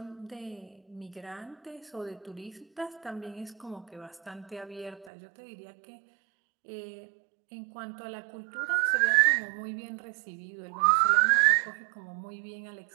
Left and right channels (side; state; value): left; drops out; at 5.1 s